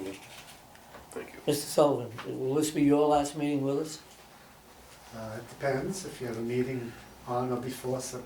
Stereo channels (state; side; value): identical; both; correlation 1.00